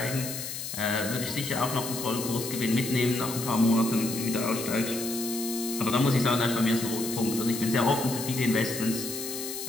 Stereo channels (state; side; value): noise; left; hiss, 7 dB below the sound